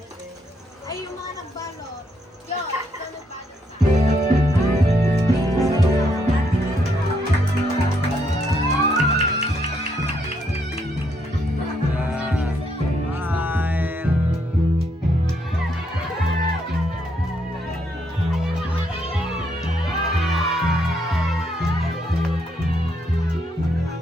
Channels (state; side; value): normal; both; correlation 0.75